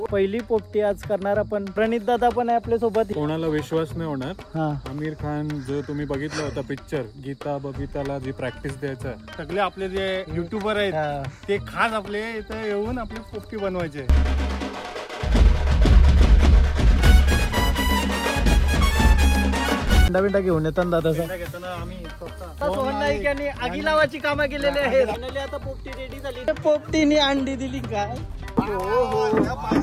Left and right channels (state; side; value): identical; both; correlation 1.00